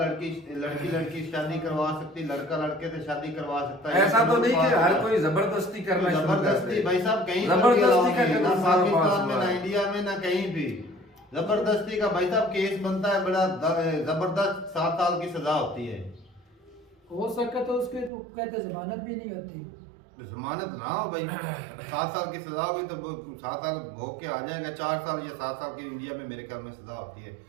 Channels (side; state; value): left; drops out; at 18.1 s